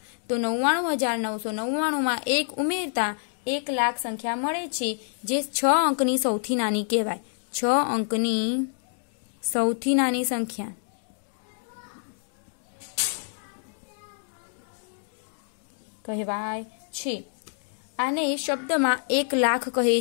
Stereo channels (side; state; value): right; silent; 60 dB below the other